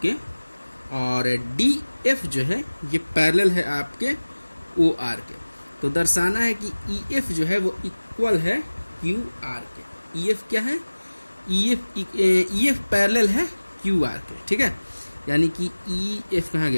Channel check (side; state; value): both; inverted; correlation -1.00